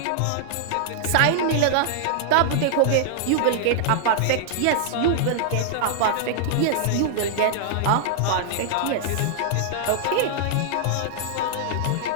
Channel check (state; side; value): different; both; correlation -0.01